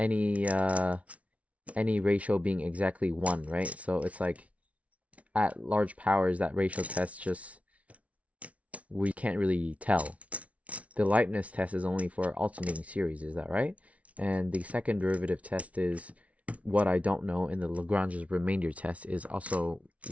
ratio being exactly 1, right? So it's like at large powers, that ratio test we can't really tell. The Leibniz test is only for alternating series, is that right? And the second derivative test is what I don't know, and the Lagrange's remainder test is also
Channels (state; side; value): late; left; 0.065 ms